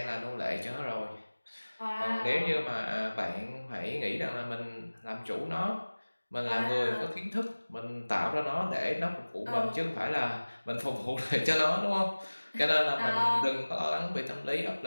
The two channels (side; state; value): both; inverted; correlation -1.00